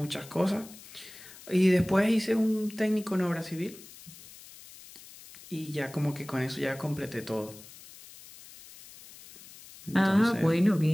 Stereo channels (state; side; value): noise; left; hiss, 19 dB below the sound